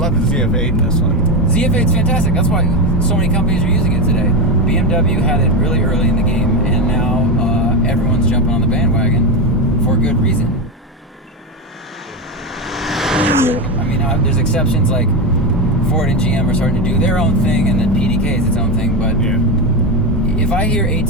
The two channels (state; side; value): normal; both; correlation 0.15